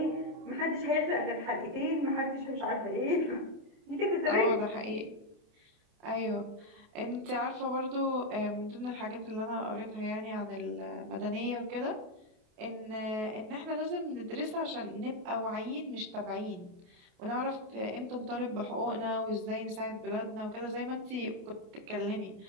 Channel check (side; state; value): left; late; 28 ms